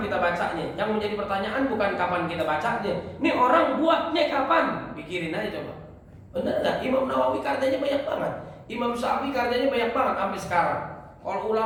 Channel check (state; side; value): identical; both; correlation 1.00